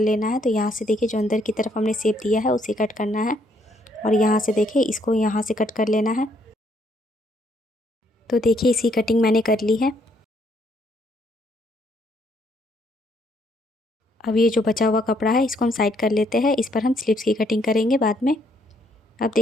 है। तो यहाँ से देखिए जो अंदर की तरफ हमने शेप दिया है उसे कट करना है और यहाँ से देखिए इसको यहाँ से कट कर लेना है। तो देखिए इसकी कटिंग मैंने कर ली है। अब ये जो बचा हुआ कपड़ा है इसको हम साइड कर लेते हैं। इस पर हम स्लीव्स की कटिंग करेंगे बाद में। अब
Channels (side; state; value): both; normal; correlation 0.70